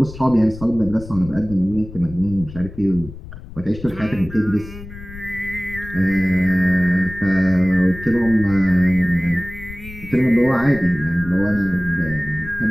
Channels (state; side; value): noise; left; rumble, 14 dB below the sound